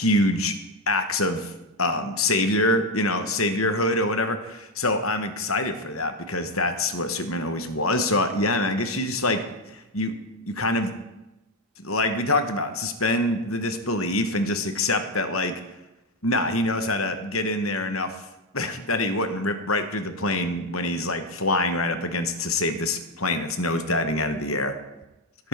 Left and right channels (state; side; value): normal; both; correlation 0.08